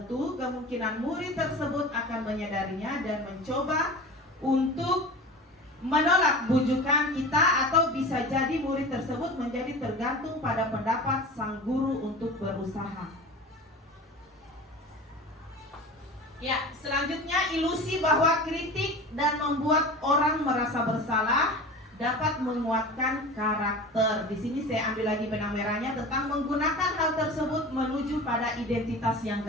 kemungkinan murid tersebut akan menyadarinya dan mencoba untuk menolak bujukan kita, atau bisa jadi murid tersebut menjadi tergantung pada pendapat sang guru untuk berusaha. Ya, selanjutnya ilusi bahwa kritik dan membuat orang merasa bersalah dapat menguatkan karakter. Di sini saya ambil lagi benang merahnya tentang menggunakan hal tersebut menuju pada identitas yang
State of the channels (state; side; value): normal; both; correlation 0.35